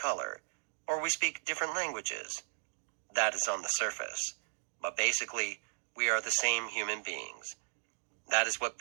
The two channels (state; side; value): silent; left; digital silence